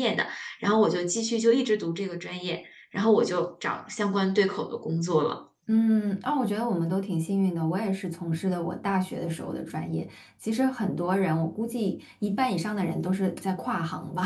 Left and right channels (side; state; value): both; identical; correlation 1.00